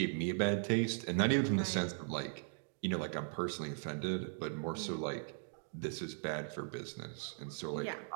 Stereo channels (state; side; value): silent; left; digital silence